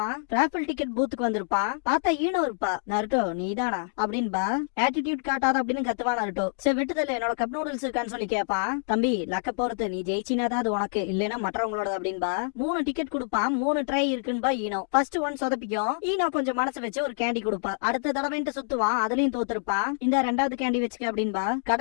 ராஃபில் டிக்கெட் பூத்துக்கு வந்திருப்பான். பார்த்தா ஈனோ இருப்பா. நருட்டோ நீதானா அப்படின்பா. ஆட்டிடியூட் காட்டாத அப்படின்னு கத்துவான் நருட்டோ. சரி விட்டுதல என்னோட கப் நூடுல்ஸ் இருக்கான்னு சொல்லி கேட்பான். தம்பி லக்க பொறுத்து, நீ ஜெயிச்சினாதான் அது உனக்கு, இல்லைன்னா மற்றவங்களோட அப்படின்பா. 3 டிக்கெட் கொடுப்பான். 3 ட்ரை இருக்குன்பா ஈனோ. ஃபர்ஸ்ட் ஒன் சொதப்பிக்கும். ஈனோ கொஞ்சம் மனசு வச்சு ஒரு கேண்டி கொடுப்பா. அடுத்த தடவைன்ட்டு சுத்துவான், அதுலயும் தோத்துருப்பான். இந்த 2வது கேண்டி வச்சுக்க அப்படின்பா.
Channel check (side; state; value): right; silent; digital silence